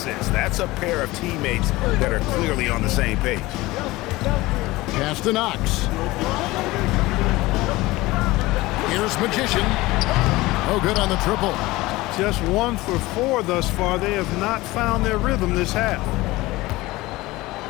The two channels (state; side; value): quieter; right; 19.7 dB